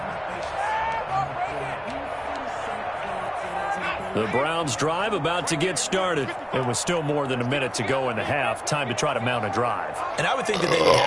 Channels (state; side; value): identical; both; correlation 1.00